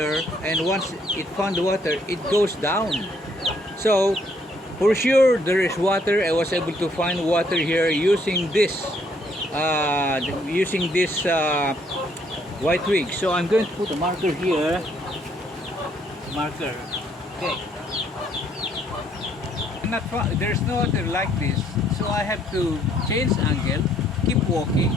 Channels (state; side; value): normal; both; correlation 0.68